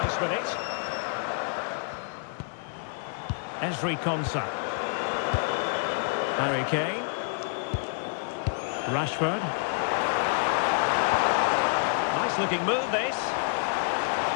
with it. Ezri Konsa. Harry Kane. Rashford. Nice looking move, this.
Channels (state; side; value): silent; right; 59 dB below the other